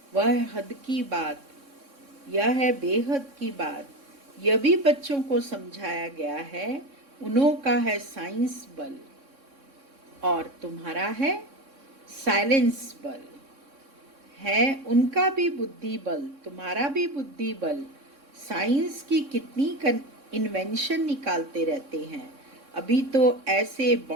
वह है हद की बात, यह है बेहद की बात। यह भी बच्चों को समझाया गया है। उन्हों का है साइंस बल और तुम्हारा है साइलेंस बल। है उनका भी बुद्धि बल, तुम्हारा भी बुद्धि बल। साइंस की कितनी इन्वेंशन निकालते रहते हैं। अभी तो ऐसे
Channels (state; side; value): late; left; 3.6 ms